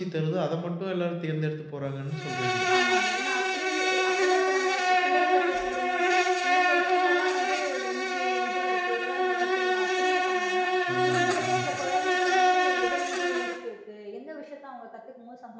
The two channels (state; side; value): identical; both; correlation 1.00